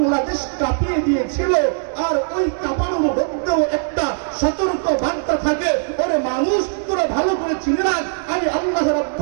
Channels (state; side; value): silent; left; digital silence